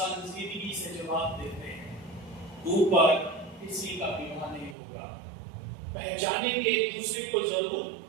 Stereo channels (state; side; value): drops out; left; at 4.8 s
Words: से जवाब देते हैं, ऊपर किसी का विवाह नहीं होगा। पहचानेंगे एक दूसरे को जरूर,